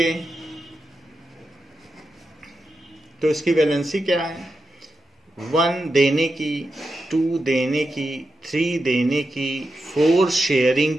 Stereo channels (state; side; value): normal; both; correlation 0.88